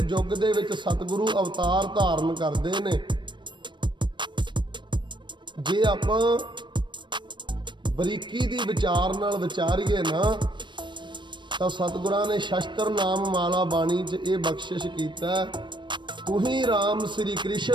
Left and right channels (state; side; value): late; left; 0.22 ms